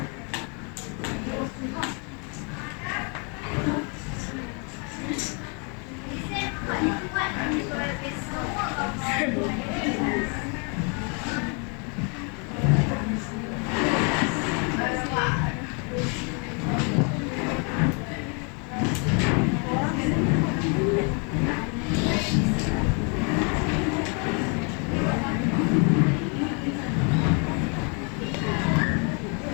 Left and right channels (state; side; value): quieter; right; 36.0 dB